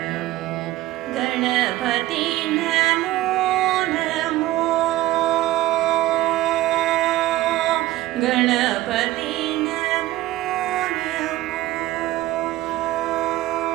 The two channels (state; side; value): quieter; left; 16.3 dB